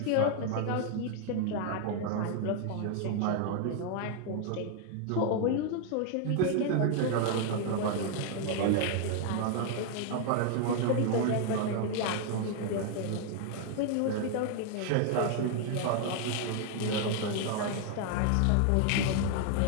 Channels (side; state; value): both; different; correlation 0.00